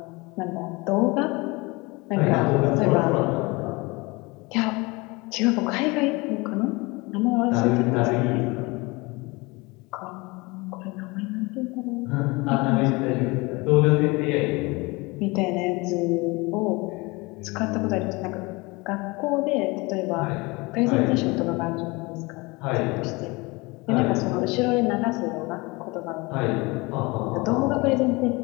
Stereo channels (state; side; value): quieter; right; 25.0 dB